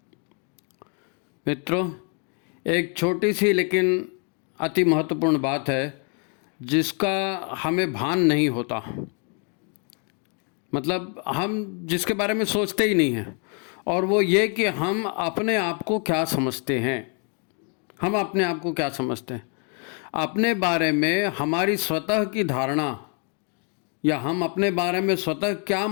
मित्रों, एक छोटी सी लेकिन अति महत्वपूर्ण बात है जिसका हमें भान नहीं होता। मतलब हम जिसके बारे में सोचते ही नहीं हैं, और वो ये कि हम अपने आप को क्या समझते हैं। हम अपने आप को क्या समझते हैं, अपने बारे में हमारी स्वतः की धारणा, या हम अपने बारे में स्वतः क्या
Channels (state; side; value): quieter; right; 39.4 dB